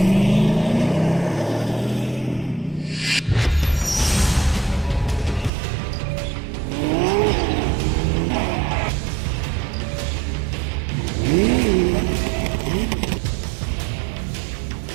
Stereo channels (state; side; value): drops out; left; at 5.5 s